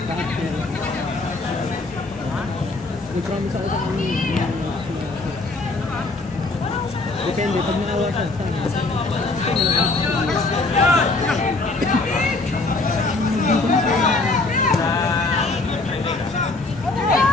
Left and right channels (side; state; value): right; quieter; 3.4 dB